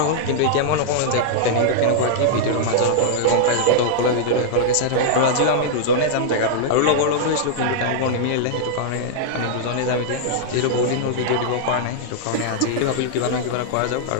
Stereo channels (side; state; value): both; different; correlation -0.02